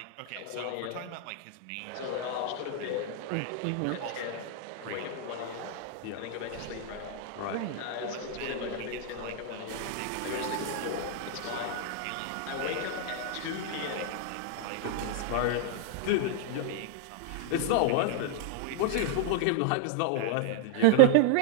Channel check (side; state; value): both; different; correlation -0.01